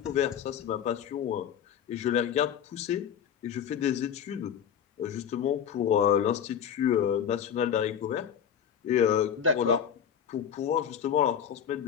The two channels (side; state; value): right; quieter; 8.6 dB